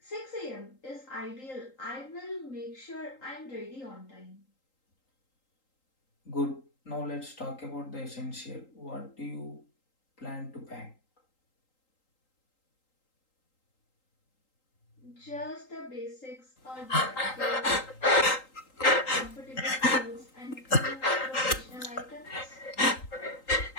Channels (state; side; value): late; right; 3.8 ms